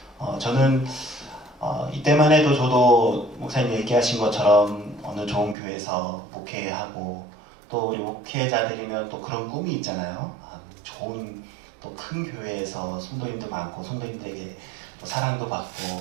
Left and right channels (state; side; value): drops out; left; at 5.6 s